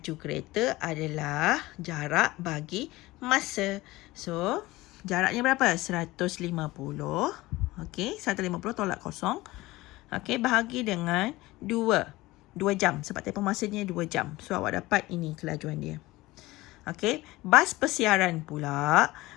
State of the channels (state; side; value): quieter; right; 19.3 dB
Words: kereta adalah jarak bagi masa. So, jaraknya berapa? 150. Okey, 150 tolak kosong. Okey, bahagi dengan 2. 2 jam. Sebab tempoh masanya 2 jam. So, awak dapat ini kelajuan dia. Okey, bas persiaran pula,